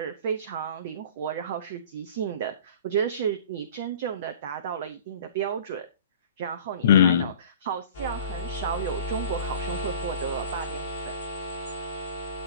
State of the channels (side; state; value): both; inverted; correlation -0.43